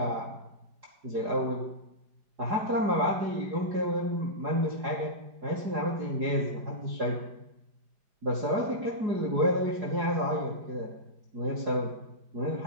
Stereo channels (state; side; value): late; left; 4.9 ms